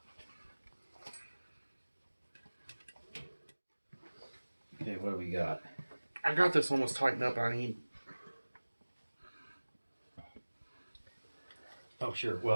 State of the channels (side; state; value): both; inverted; correlation -1.00